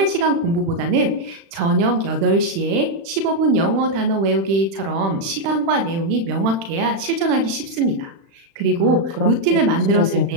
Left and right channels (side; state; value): left; late; 36 ms